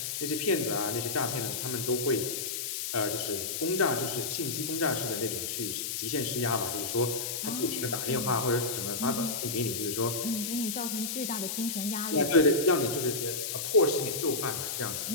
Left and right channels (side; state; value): left; noise; hiss, 3 dB below the sound